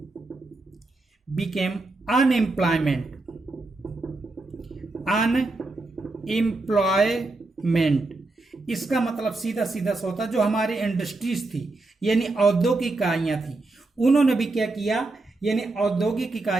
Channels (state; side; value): quieter; left; 3.2 dB